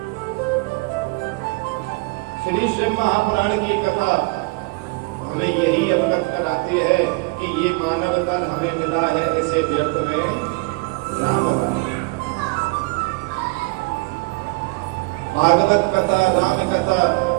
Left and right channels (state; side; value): quieter; left; 28.1 dB